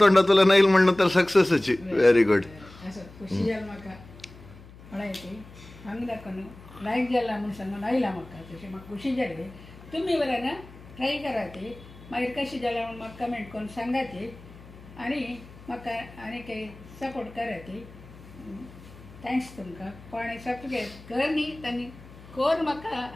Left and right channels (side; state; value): left; noise; hum, 20 dB below the sound